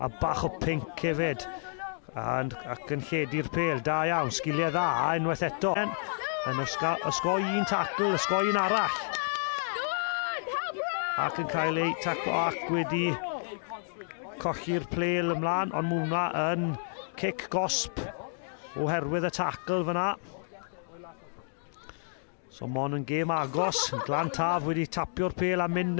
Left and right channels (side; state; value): right; silent; digital silence